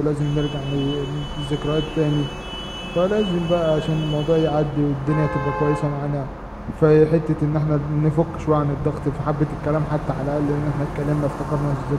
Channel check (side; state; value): both; identical; correlation 1.00